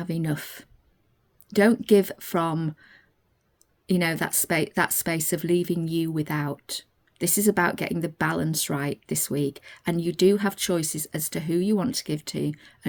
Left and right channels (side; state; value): both; identical; correlation 1.00